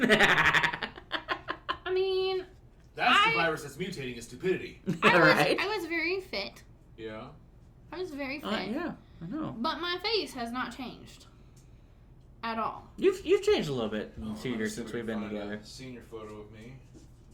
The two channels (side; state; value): both; identical; correlation 1.00